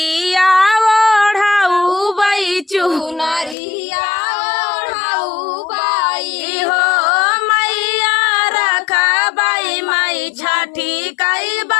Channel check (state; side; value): drops out; right; at 3.6 s